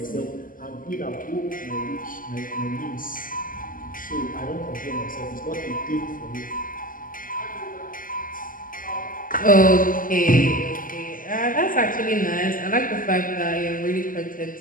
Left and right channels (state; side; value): late; right; 0.40 ms